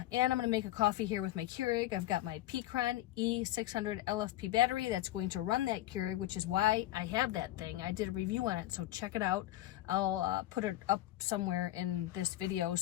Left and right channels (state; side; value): quieter; right; 15.1 dB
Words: and I'm going to make a coffee here with my Keurig. I've got my Peakron E600 LFP battery that's going to run that Keurig, which is why I have that thing. I did a review on it, so check it out. I'll put it up somewhere in this video